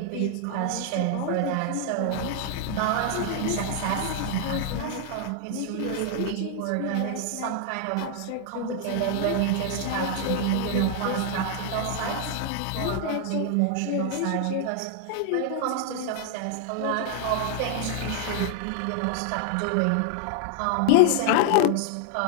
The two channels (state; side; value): different; both; correlation 0.00